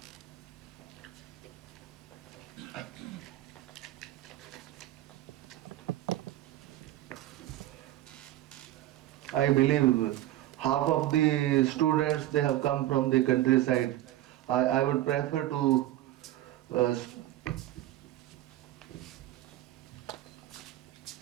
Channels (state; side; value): quieter; left; 14.7 dB